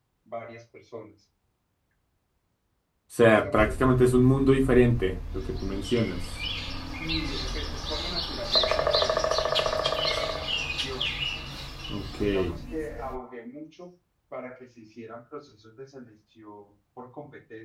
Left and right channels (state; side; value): identical; both; correlation 1.00